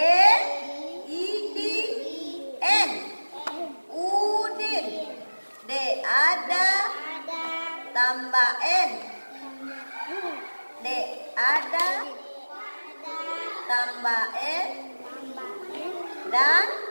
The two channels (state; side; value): inverted; both; correlation -1.00